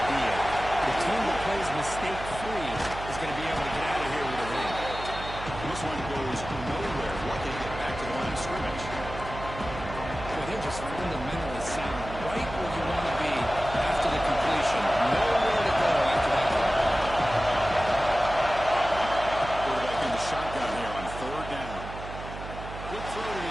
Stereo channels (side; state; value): right; noise; hum, 10 dB below the sound